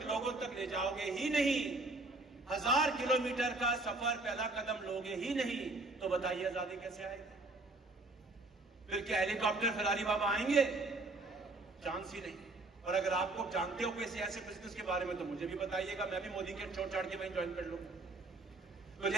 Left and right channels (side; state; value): left; quieter; 3.1 dB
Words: लोगों तक ले जाओगे ही नहीं, 1000 किलोमीटर का सफर पहला कदम लोगे ही नहीं, तो बताइए आजादी कैसे आएगी? फिर क्या हेलीकॉप्टर फिरारी बाबा आएंगे? चांस ही नहीं। और अगर आपको जानते हो किसी ऐसे बिजनेस के बारे में तो मुझे भी बताइएगा, मैं भी मोदी के छोड़ छाड़ के वहीं ज्वाइन कर लूंगा। तो